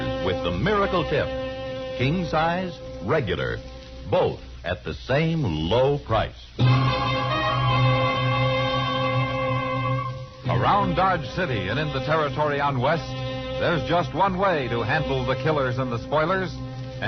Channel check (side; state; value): both; identical; correlation 1.00